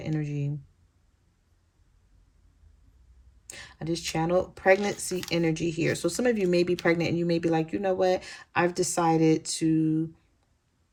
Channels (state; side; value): identical; both; correlation 1.00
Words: energy. I just channeled pregnancy energy here. So some of you may be pregnant and you may be like, you know what? I've decided to